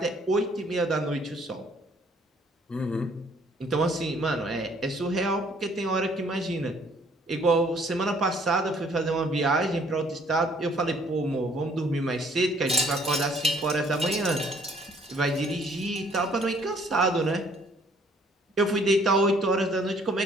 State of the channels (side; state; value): both; normal; correlation 0.61